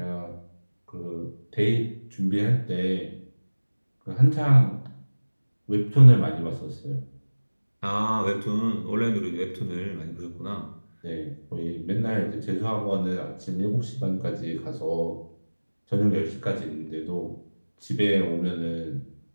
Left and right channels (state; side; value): inverted; both; correlation -1.00